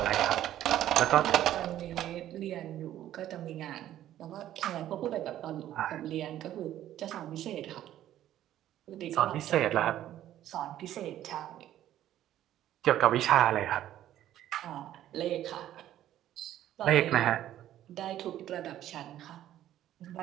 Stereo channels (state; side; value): quieter; left; 12.4 dB